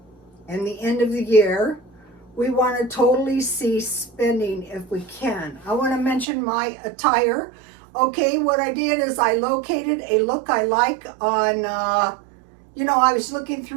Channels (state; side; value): drops out; left; at 6.2 s